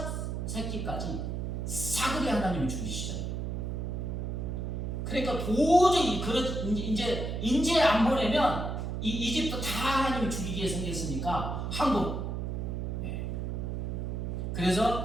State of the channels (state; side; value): noise; right; hum, 3 dB below the sound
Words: 새끼까지 사그리 하나님이 죽이시잖아요. 그러니까 도저히 이제 안 보내면 이 이집트 다 하나님이 죽이게 생겼으니까 한국.